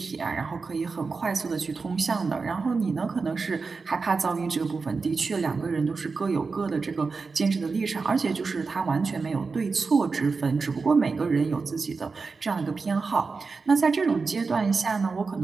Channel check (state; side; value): quieter; left; 4.5 dB